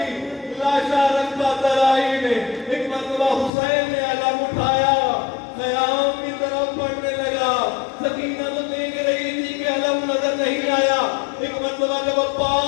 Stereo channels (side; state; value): right; drops out; at 3.5 s